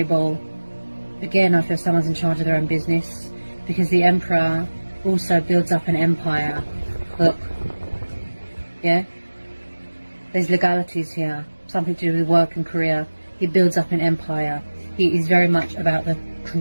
Again, I feel someone's in charge of their own business. Because the Emperor also builds up an empire. Look. Yeah? There's legalities here. Something to do with work and career. He builds up an empire. He is very much about the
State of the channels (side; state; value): both; inverted; correlation -1.00